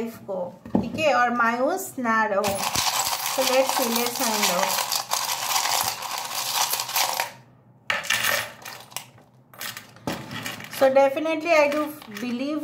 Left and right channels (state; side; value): identical; both; correlation 1.00